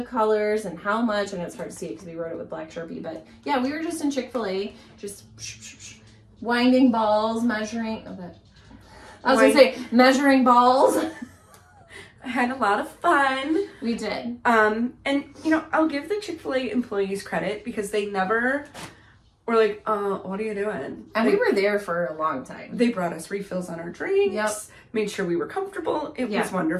colors and how much, and it's hard to see it because we wrote it with black Sharpie, but yeah, we were just in Chick-fil-A, just winding balls, measuring, measuring balls. I had a lot of fun. We did. And I'll give the Chick-fil-A employees credit because they never were like, what are you doing? And we were there for a long time. They brought us refills on our drinks, made sure we were comfortable. It was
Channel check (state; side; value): identical; both; correlation 1.00